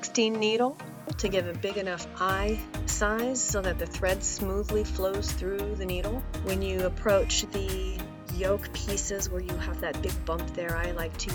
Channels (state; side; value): identical; both; correlation 1.00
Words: needle to give a big enough eye size so that the thread smoothly flows through the needle. When you approach the yoke pieces where you have that big bump there, I like